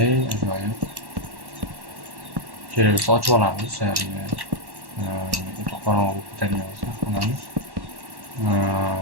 ajoyib. Kerak bo'lsa ochib olamiz. Qorong'u ko'targan bo'lsa, xonamiz.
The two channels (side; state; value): left; late; 1.1 ms